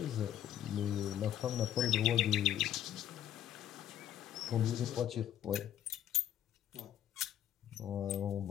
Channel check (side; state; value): right; quieter; 10.9 dB